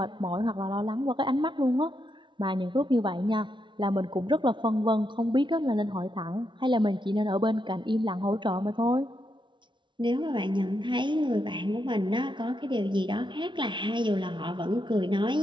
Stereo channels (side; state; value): left; late; 0.23 ms